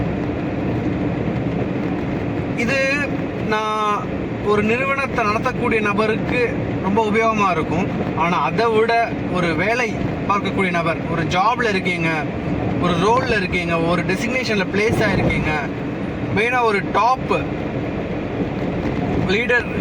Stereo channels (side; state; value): both; identical; correlation 1.00